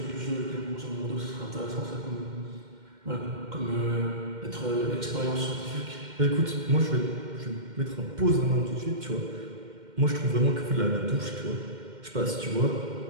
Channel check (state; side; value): late; left; 2.1 ms